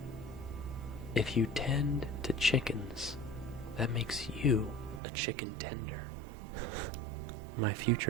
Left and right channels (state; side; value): drops out; left; at 5.0 s